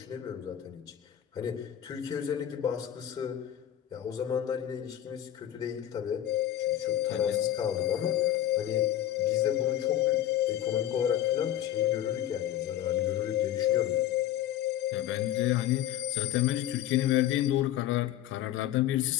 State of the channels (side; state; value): right; quieter; 11.9 dB